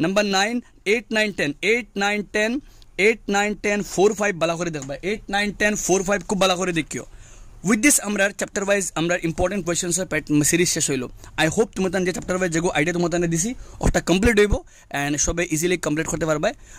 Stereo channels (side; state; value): both; identical; correlation 1.00